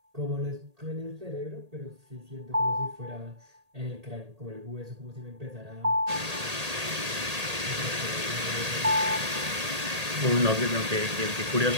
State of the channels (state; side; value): late; left; 1.8 ms